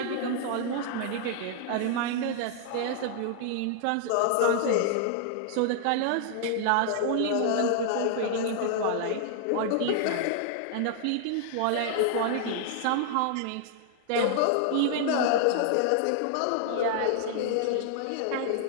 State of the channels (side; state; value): both; different; correlation -0.01